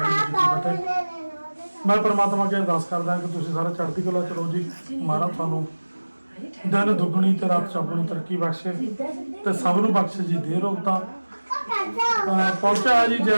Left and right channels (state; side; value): inverted; both; correlation -1.00